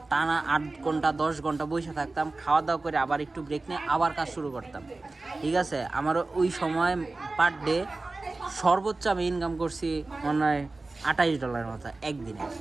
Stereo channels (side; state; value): left; quieter; 3.3 dB